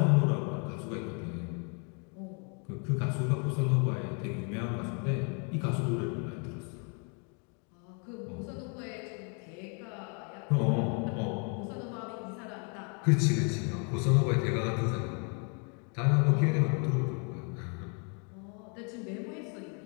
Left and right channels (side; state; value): right; quieter; 37.7 dB